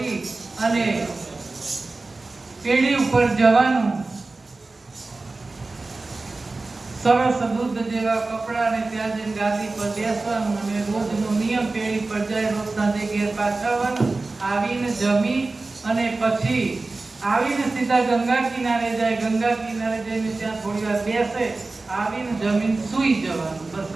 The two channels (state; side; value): quieter; left; 3.4 dB